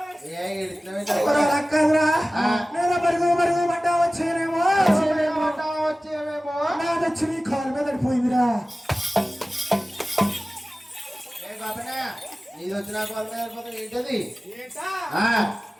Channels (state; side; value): normal; both; correlation 0.97